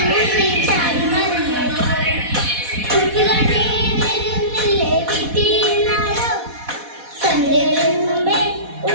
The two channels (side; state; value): left; late; 4.1 ms